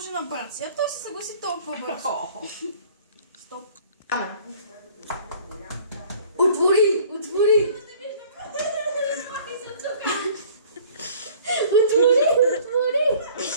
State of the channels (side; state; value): both; inverted; correlation -0.51